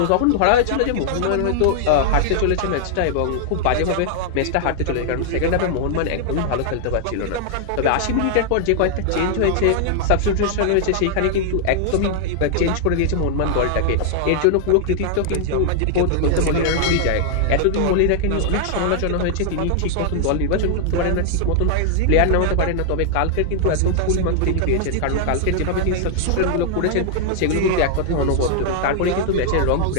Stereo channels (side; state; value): both; different; correlation 0.00